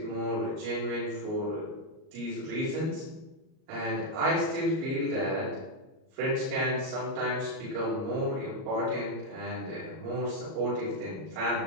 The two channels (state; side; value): late; left; 38 ms